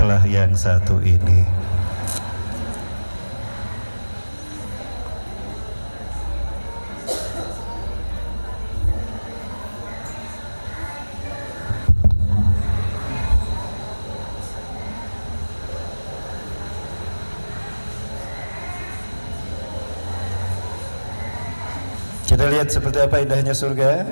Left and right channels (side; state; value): both; inverted; correlation -1.00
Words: yang satu ini. Kita lihat seperti apa indahnya surga.